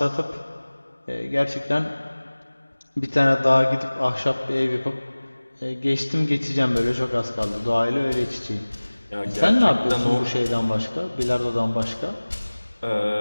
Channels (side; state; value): both; inverted; correlation -1.00